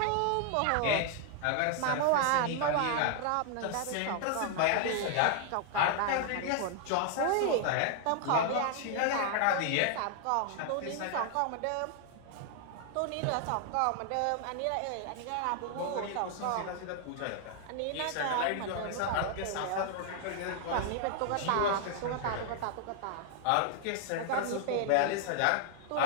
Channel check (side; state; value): both; different; correlation 0.00